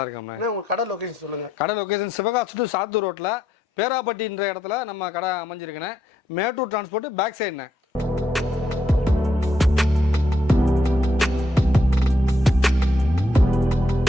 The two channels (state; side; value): normal; both; correlation 0.77